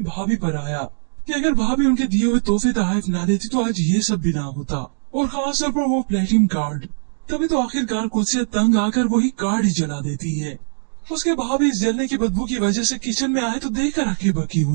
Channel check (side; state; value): left; silent; digital silence